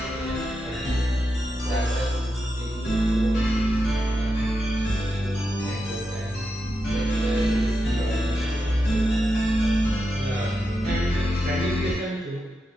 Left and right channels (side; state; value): both; normal; correlation 0.87